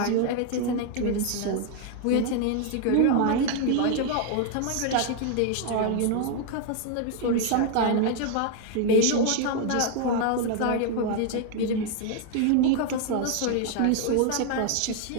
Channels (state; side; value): different; both; correlation 0.00